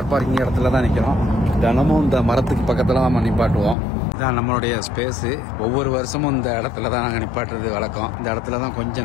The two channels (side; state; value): right; drops out; at 3.8 s